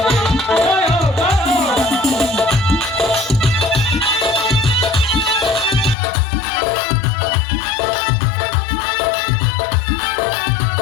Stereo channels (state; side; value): drops out; right; at 6.0 s